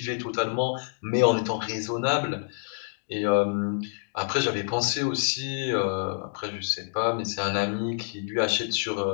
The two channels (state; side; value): silent; right; digital silence